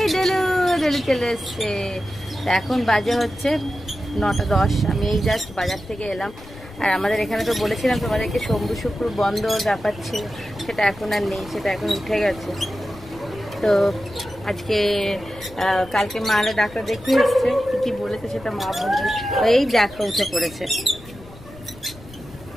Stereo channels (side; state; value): left; noise; rumble, 19 dB below the sound